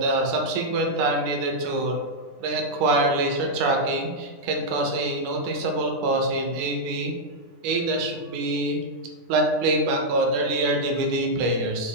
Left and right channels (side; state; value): left; late; 10 ms